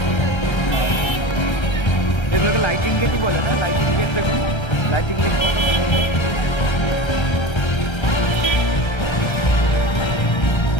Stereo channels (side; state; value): right; late; 1.3 ms